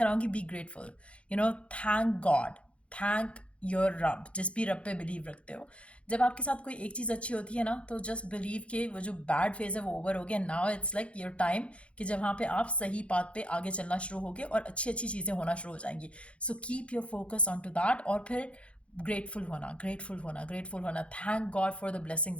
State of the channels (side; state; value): right; late; 0.061 ms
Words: be grateful. Thank God, thank your रब, जिस भी रब पे बिलीव रखते हो। जब आपके साथ कोई एक चीज़ अच्छी होती है ना, तो जस्ट बिलीव के वो जो बैड फेज है वो ओवर हो गया। Now it's like your time कि जब वहाँ पे आप सही पाथ पे आगे चलना शुरू होगे और अच्छी अच्छी चीज़ें होना शुरू हो जाएंगी। So keep your focus on to that और फिर ग्रेटफुल होना, ग्रेटफुल होना, ग्रेटफुल होना। Thank God for the blessings